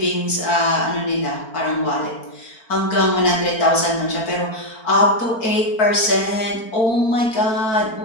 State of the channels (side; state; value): right; late; 4.4 ms